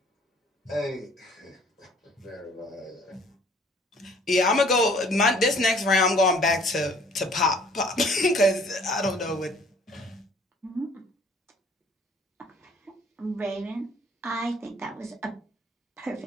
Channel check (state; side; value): normal; both; correlation 0.56